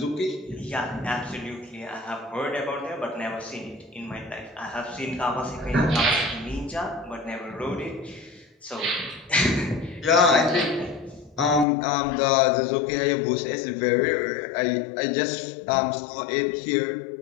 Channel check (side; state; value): right; drops out; at 11.7 s